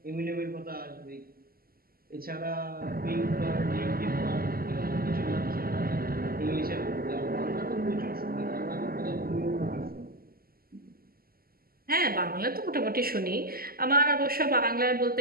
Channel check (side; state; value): left; late; 0.43 ms